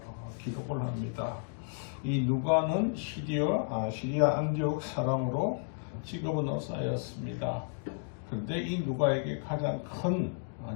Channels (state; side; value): silent; right; digital silence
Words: 기록을 합니다. 이 누가는 시리아 안디옥 사람으로 직업은 의사였습니다. 그런데 이 누가에게 가장 큰